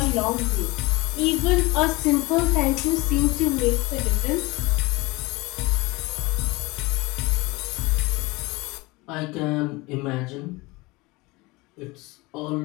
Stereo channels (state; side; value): quieter; right; 23.3 dB